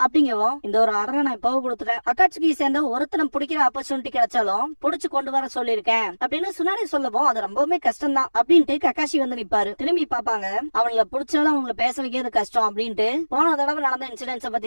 அப்படிங்கவும் இந்த ஒரு ஆர்டரை நான் இப்போ கொடுத்துட்டேன். அகாட்சுகியை சேர்ந்த ஒருத்தனை பிடிக்கிற ஆப்பர்ச்சுனிட்டி கிடைச்சாலும் புடிச்சு கொண்டு வர சொல்லிருக்கேன் அப்படின்னு சுனாடே சொல்லவும் அது ரொம்பவுமே கஷ்டம் தான் அப்படின்ட்டு கக்காஷி வந்து நிப்பாரு. திரும்பி பாப்பாங்க, அவங்கள பிடிச்சாலும் அவங்கள பேச வைக்கிறது கஷ்டம் அப்படின்ட்டு போன தடவை நடந்த இன்சிடென்ட்ஸ்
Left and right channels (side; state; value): both; inverted; correlation -1.00